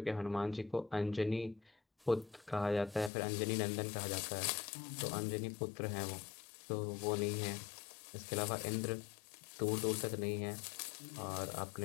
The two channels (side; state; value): right; drops out; at 3.1 s